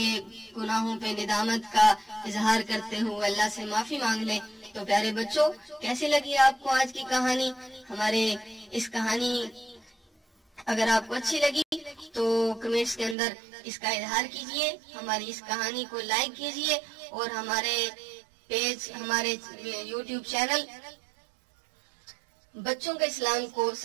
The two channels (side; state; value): left; drops out; at 13.2 s